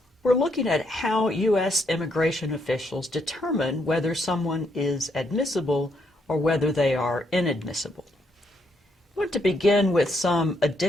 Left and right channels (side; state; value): both; normal; correlation 0.75